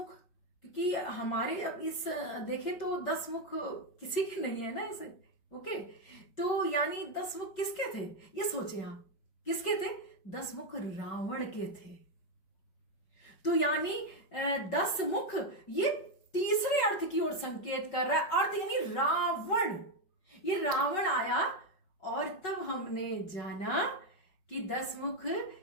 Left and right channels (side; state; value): right; late; 5.3 ms